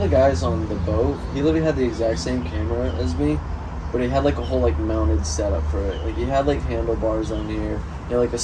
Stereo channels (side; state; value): both; identical; correlation 1.00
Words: the guys on the boat, he literally had the exact same camera as me, but he had like a whole like mounted setup for it. Like he had like handlebars on here, he had like a